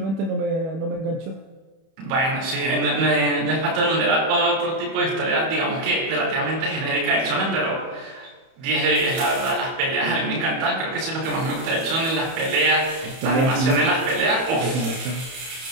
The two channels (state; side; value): late; left; 31 ms